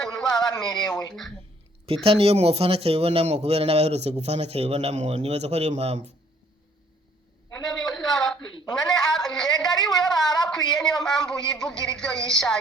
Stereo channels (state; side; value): normal; both; correlation 0.62